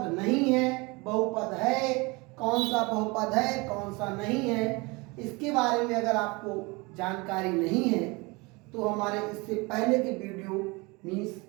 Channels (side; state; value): left; quieter; 25.9 dB